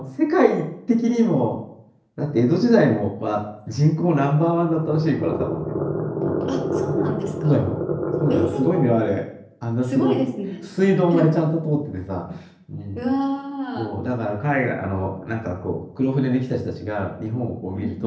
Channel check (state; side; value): identical; both; correlation 1.00